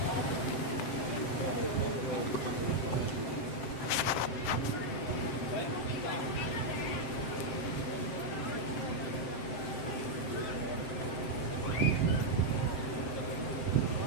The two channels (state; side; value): late; right; 7.7 ms